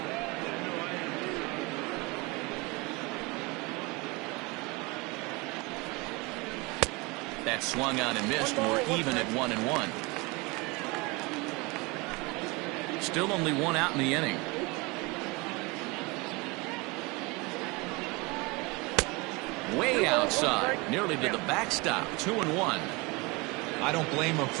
That swung on and missed. We're even at 1-1. Still only one out in the inning. Way outside, nearly to the backstop. 2-1. I don't blame him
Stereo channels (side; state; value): left; quieter; 26.0 dB